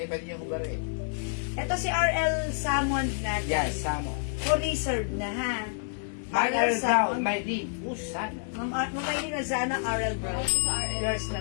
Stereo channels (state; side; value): silent; right; digital silence